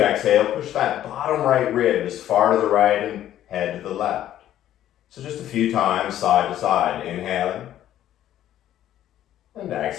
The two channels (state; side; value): quieter; right; 12.1 dB